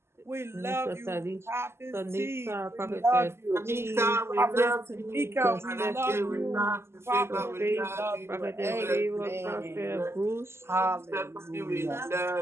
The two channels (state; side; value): late; left; 0.12 ms